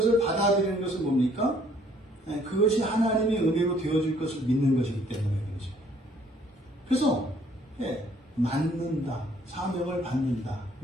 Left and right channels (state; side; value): normal; both; correlation 0.61